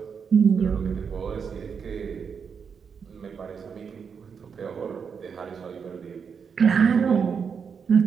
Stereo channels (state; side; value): quieter; left; 6.4 dB